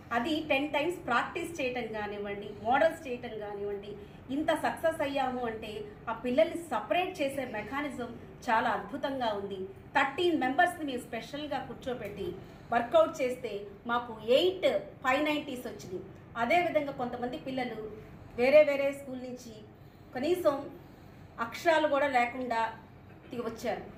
అది 10 times ప్రాక్టీస్ చేయటం కానివ్వండి, మోడల్స్ చేయటం కానివ్వండి, ఇంత సక్సెస్ అయ్యాము అంటే ఆ పిల్లల్ని సపరేట్ చేసే మెకానిజం చాలా అద్భుతంగా ఉంది. 13 మెంబర్స్ని మేము స్పెషల్గా కూర్చోబెట్టి వర్కౌట్ చేస్తే మాకు 8 590s వచ్చినాయి. అదేవిధంగా కొంతమంది పిల్లలు వేరే స్కూల్ నుంచి కనీసం అక్షరాలు కూడా లేకుండా వచ్చారు.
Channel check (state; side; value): identical; both; correlation 1.00